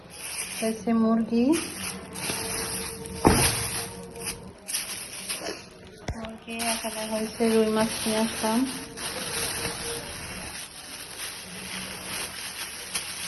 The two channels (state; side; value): identical; both; correlation 1.00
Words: মুরগি এখানে হয়েছে রুই মাছ নিয়ে আসলাম।